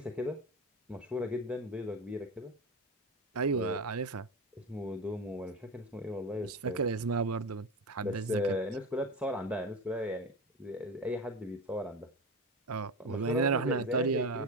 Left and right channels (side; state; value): both; normal; correlation 0.22